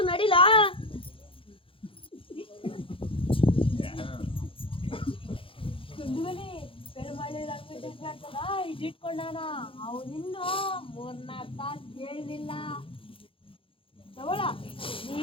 ನಡಿಲ. ಇಟ್ಕೊಂಡಾನ ಅವನಿನ್ನು 3-4 ತಾಸು ಕೇಳಿಲ್ಲ. ತಗೊಳ ನೀ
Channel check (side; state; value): right; late; 0.26 ms